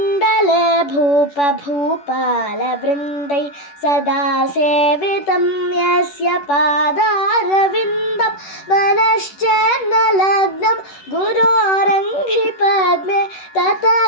भूपभूपालवृन्दै सदा सेवितं यस्य पादारविन्दं मनश्चेन्न लग्नं गुरोरङ्घ्रिपद्मे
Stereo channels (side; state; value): right; late; 11 ms